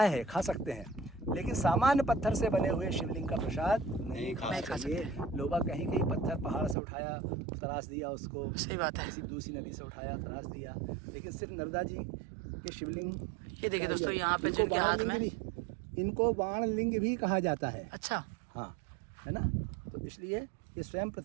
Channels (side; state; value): left; drops out; at 6.8 s